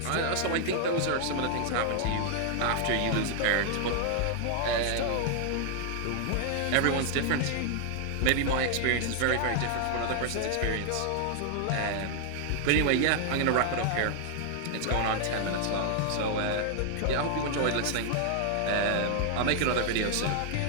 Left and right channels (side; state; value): both; different; correlation 0.00